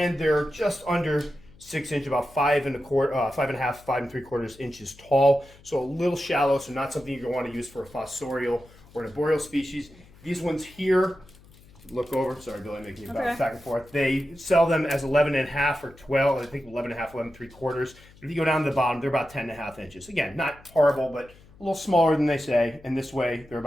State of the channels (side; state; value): left; noise; hum, 25 dB below the sound